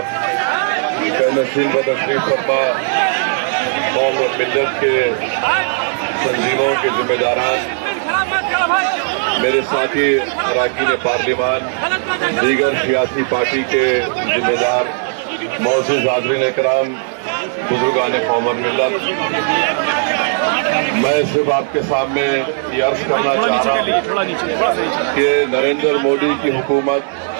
نشین و تشریف فرما قوم و ملت کے تنظیموں کے ذمہ داران، میرے ساتھی اراکین پارلیمان، دیگر سیاسی پارٹی کے ذمہ دار، معزز حاضرین اکرام، بزرگان قوم اور ملت، میں صرف آپ کے سامنے یہ عرض کرنا چاہ رہا ہوں کہ نریندر مودی کی حکومت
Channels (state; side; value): silent; left; 69 dB below the other